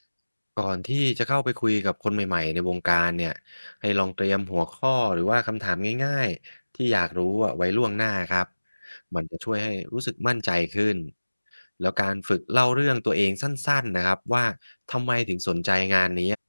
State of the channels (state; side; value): inverted; both; correlation -1.00